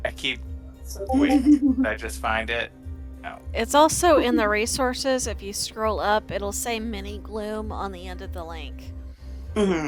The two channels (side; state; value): both; identical; correlation 1.00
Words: I keep waiting. Did I just find it? No. It's also in the resources. If you scroll up, it'll say Mini Gloom on the end of the link.